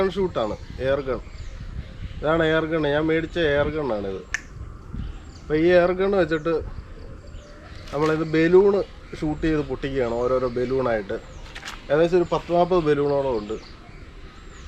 ഷൂട്ടാണ്. എയർ ഗൺ, ഇതാണ് എയർ ഗൺ. ഞാൻ മേടിച്ച എയർ ഗണ്ണാണിത്. അപ്പോൾ ഈ എയർ ഗൺ വെച്ചിട്ട് നമ്മളിത് ബലൂണ് ഷൂട്ട് ചെയ്ത് പൊട്ടിക്കുകയാണ്, ഓരോരോ ബലൂണായിട്ട്. ഏകദേശം ഒരു 10-40 ബലൂണോളം ഉണ്ട്.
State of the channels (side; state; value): both; identical; correlation 1.00